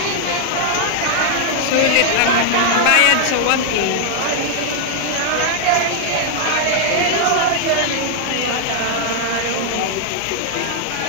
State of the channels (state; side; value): different; both; correlation 0.00